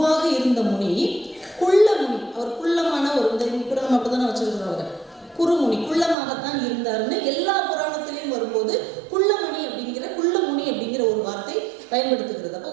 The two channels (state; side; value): drops out; left; at 6.2 s